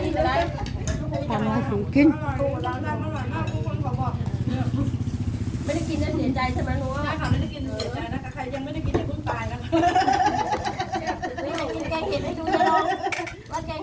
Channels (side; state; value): both; identical; correlation 1.00